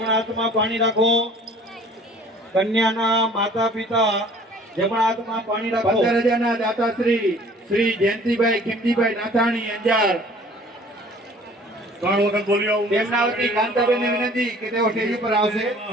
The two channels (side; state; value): both; normal; correlation 0.51